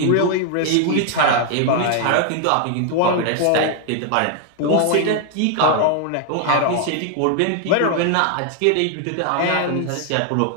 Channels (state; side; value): different; both; correlation 0.00